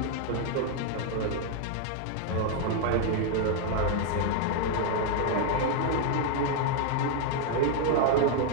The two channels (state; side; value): different; both; correlation 0.00